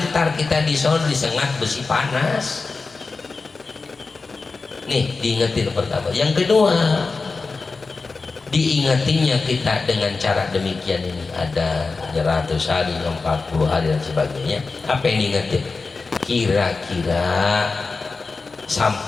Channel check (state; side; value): quieter; right; 4.1 dB